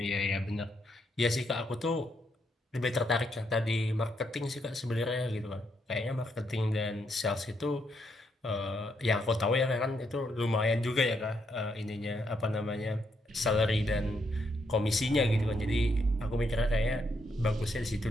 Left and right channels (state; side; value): normal; both; correlation 0.77